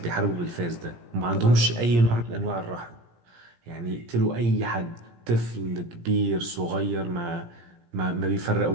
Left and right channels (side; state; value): left; late; 17 ms